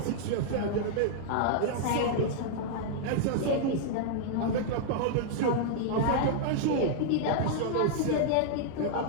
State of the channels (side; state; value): both; different; correlation -0.01